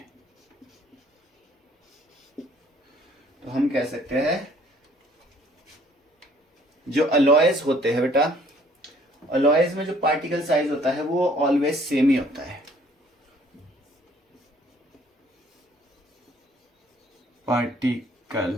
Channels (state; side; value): normal; both; correlation 0.59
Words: तो हम कह सकते हैं जो अलॉयस होते हैं बेटा, अलॉयस में जो पार्टिकल साइज होता है वो ऑलवेज सेम ही होता है।